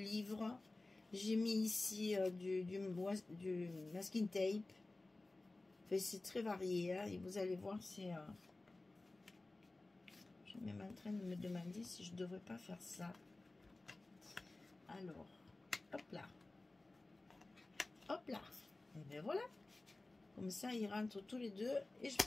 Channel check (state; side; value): quieter; right; 3.0 dB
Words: J'ai mis ici du masking tape. Enfin, c'est très varié, hein, et vous allez voir, c'est... je suis même en train de me demander si je ne devrais pas faire ça. Alors, hop là. Hop là. Et bien voilà. Comme ça, ils rentrent tous les deux et je